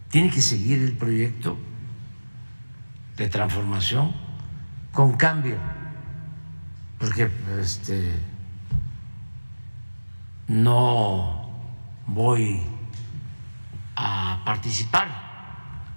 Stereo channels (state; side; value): inverted; both; correlation -1.00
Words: Tiene que seguir el proyecto de transformación con cambio, porque no voy a participar